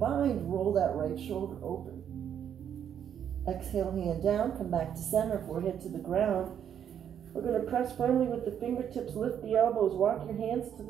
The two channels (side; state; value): left; quieter; 9.0 dB